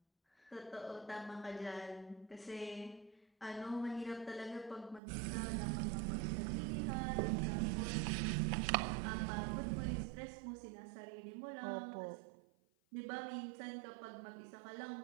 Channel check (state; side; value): drops out; left; at 5.0 s